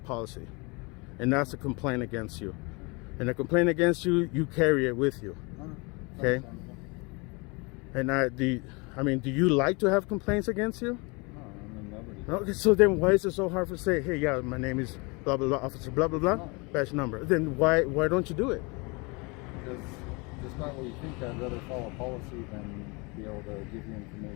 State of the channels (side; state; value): right; quieter; 28.8 dB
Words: and that's a complaint against you, and a complaint against you, you carry it with you, okay? And do you like to have complaints against you? Okay, so then why is it so hard to say, hey, yeah, my name is blah, blah, blah, officer, blah, blah, blah, badge number? Then why don't you do it? Because despite what you think, I'd rather follow policy than be able to give you